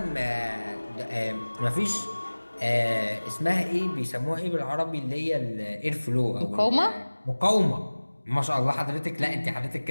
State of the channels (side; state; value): both; inverted; correlation -1.00